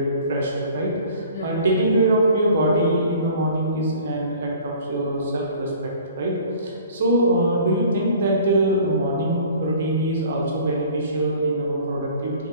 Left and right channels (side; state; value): both; inverted; correlation -0.49